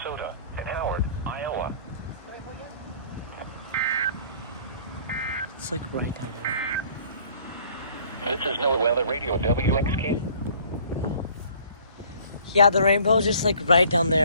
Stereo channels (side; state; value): both; inverted; correlation -0.54